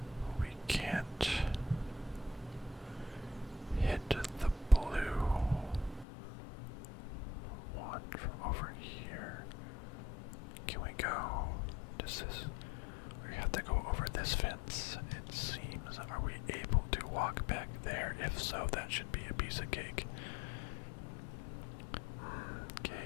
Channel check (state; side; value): drops out; right; at 6.1 s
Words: We can't What's this? We have to go over this fence. It seems. Are we able to walk back there? If so, that should be a piece of cake.